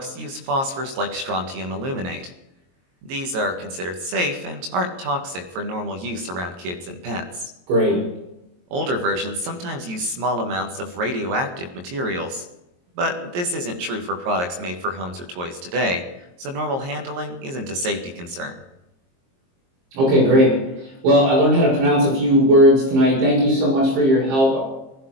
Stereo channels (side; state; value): left; late; 22 ms